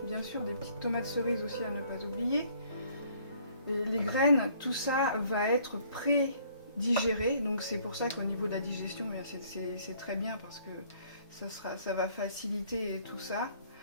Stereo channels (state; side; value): inverted; both; correlation -0.60